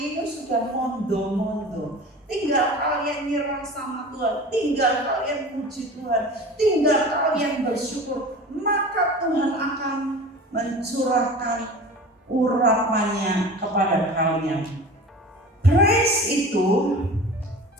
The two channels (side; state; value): both; normal; correlation 0.37